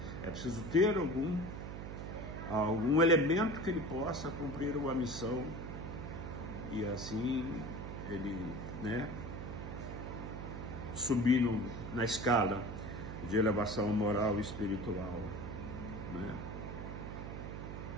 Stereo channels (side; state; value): right; noise; hum, 7 dB below the sound